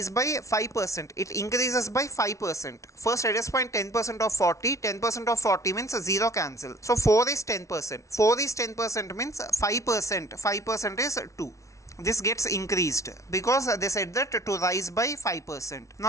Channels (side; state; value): right; late; 0.15 ms